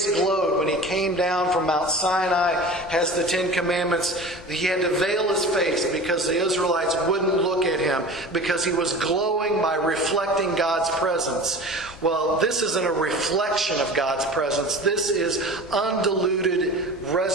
glowed when he came down from Mount Sinai, has the Ten Commandments. He had to veil his face because the Israelites wouldn't look at him because he was glowing by reflecting God's presence. Well, this isn't a reflection of God's presence. This is undiluted,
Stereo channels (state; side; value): normal; both; correlation 0.37